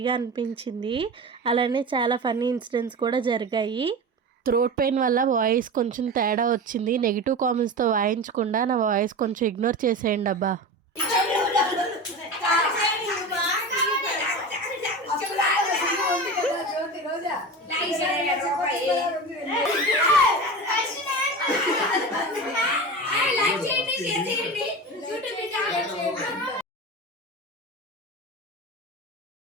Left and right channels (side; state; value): both; normal; correlation 0.28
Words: అనిపించింది. అలానే చాలా ఫన్నీ ఇన్సిడెంట్స్ కూడా జరిగాయి. థ్రోట్ పెయిన్ వల్ల వాయిస్ కొంచెం తేడా వచ్చింది. నెగిటివ్ కామెంట్స్తో వాయించకుండా నా వాయిస్ కొంచెం ఇగ్నోర్ చేసేయండి అబ్బా.